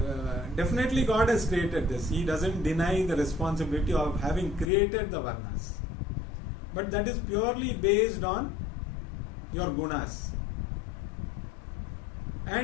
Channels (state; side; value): drops out; right; at 4.7 s